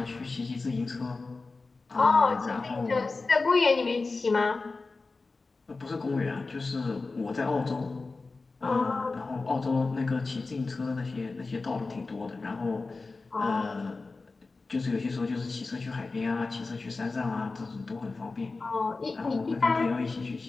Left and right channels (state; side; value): quieter; right; 3.8 dB